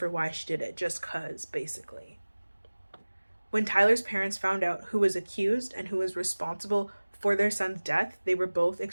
why she did it, just 'cause, basically. When Tyler's parents found out who was accused and who was responsible for their son's death, they were both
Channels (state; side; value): inverted; both; correlation -1.00